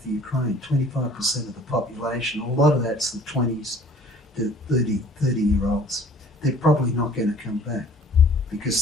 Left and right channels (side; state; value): both; normal; correlation 0.52